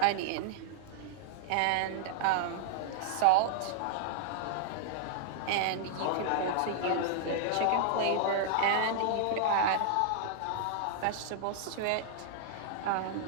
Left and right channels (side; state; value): both; different; correlation -0.01